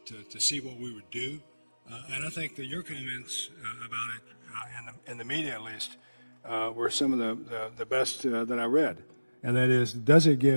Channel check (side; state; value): both; inverted; correlation -1.00